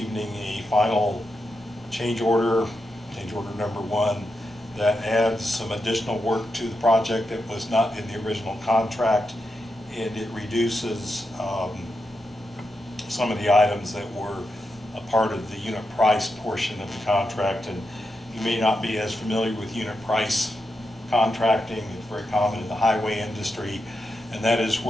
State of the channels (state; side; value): normal; both; correlation 0.86